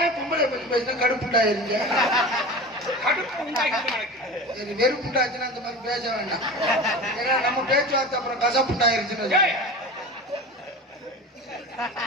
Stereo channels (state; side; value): normal; both; correlation 0.31